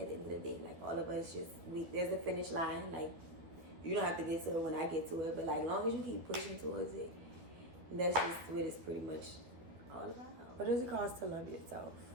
the end of the day. Like all of us, there's a finish line. Like you don't have to get to it when I get to it, but like as long as you keep pushing towards it, that's just what it's pretty much all about. What does it cost to love yourself?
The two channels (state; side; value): late; left; 12 ms